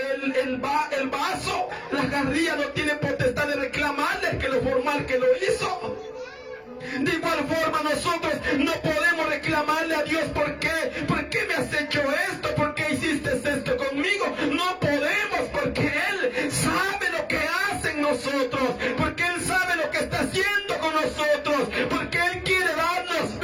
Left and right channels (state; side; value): identical; both; correlation 1.00